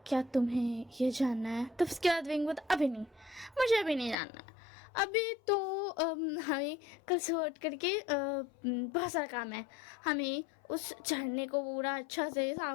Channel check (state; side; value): drops out; right; at 4.2 s